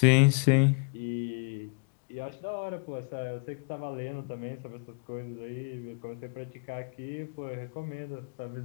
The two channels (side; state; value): right; quieter; 39.3 dB